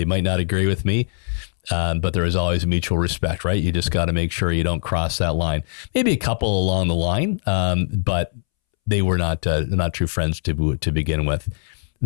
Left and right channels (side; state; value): right; silent; 65 dB below the other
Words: might not agree with me. But there is always mutual respect, right? You just got to make sure you don't cross that line. Maybe a couple along the line, but they were not true friends to begin with.